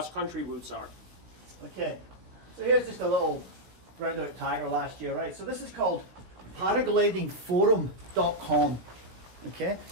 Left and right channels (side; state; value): left; late; 17 ms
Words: routes are. Okay, so here's just a little roundabout tiger last year, right? So this is called paraglidingforum.com. Okay,